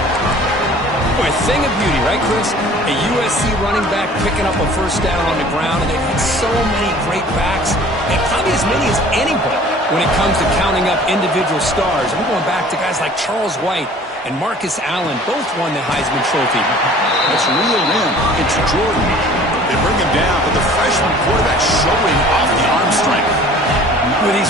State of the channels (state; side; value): normal; both; correlation 0.49